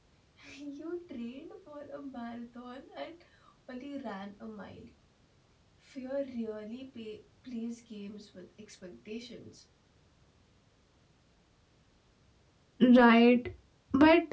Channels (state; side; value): identical; both; correlation 1.00